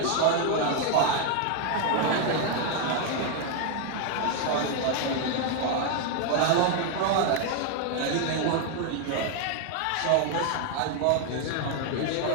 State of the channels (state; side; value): different; both; correlation 0.01